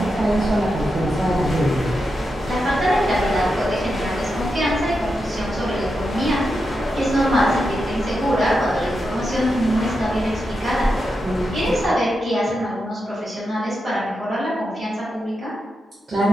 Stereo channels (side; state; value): both; normal; correlation 0.87